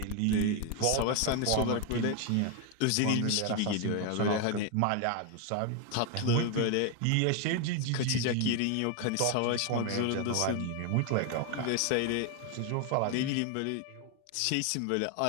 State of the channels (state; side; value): different; both; correlation 0.01